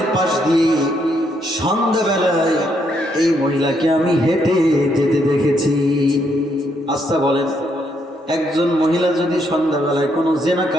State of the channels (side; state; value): both; normal; correlation 0.74